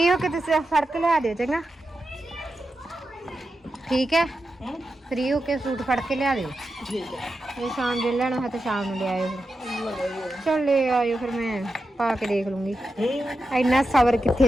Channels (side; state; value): both; normal; correlation 0.89